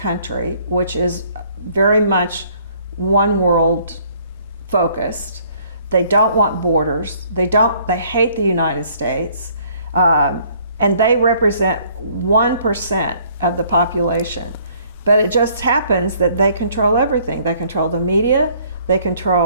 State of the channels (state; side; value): inverted; both; correlation -0.61